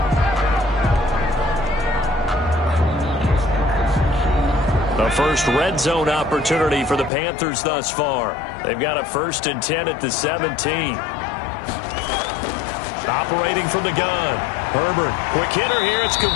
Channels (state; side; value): drops out; right; at 7.1 s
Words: The first red zone opportunity for the Panthers thus far. They've got a 1st and 10 at the 17. Operating from the gun. Herbert, quick hitter here, it's